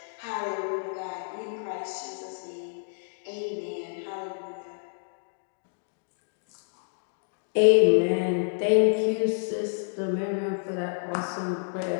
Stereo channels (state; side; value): silent; right; digital silence